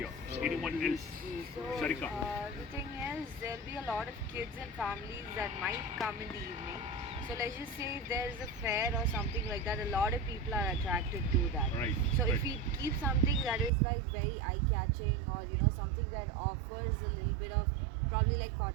Anyone else? So, Sarika. the thing is, there'll be a lot of kids and families that might come in the evening. So let's just say if there's a fair or something like that, a lot of people are attracted to that. Right. So right. if we keep something that is like very eye-catching, or something that offers a little bit of probably like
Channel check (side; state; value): left; drops out; at 13.7 s